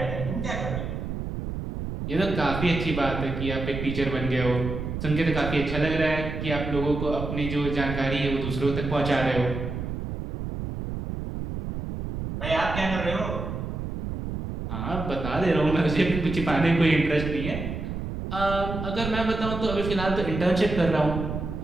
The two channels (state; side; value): noise; right; rumble, 5 dB below the sound